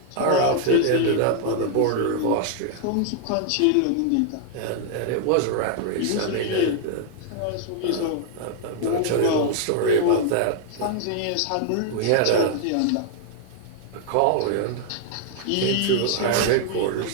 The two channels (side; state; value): both; different; correlation 0.00